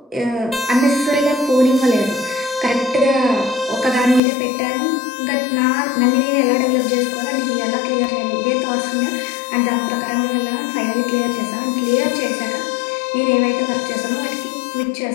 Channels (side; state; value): right; drops out; at 4.2 s